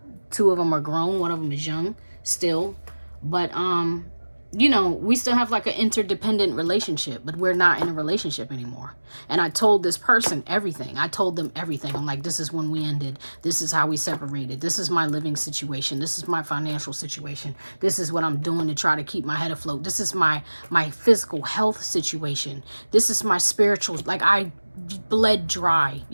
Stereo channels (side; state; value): both; inverted; correlation -1.00